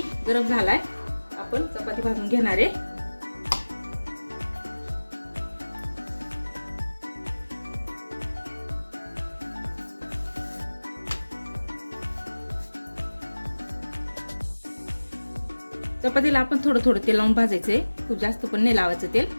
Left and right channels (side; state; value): both; inverted; correlation -1.00